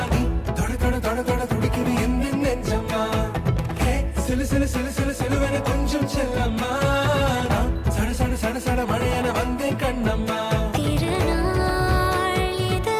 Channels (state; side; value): identical; both; correlation 1.00